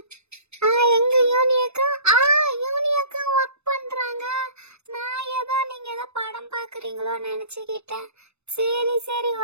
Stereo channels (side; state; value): left; late; 0.80 ms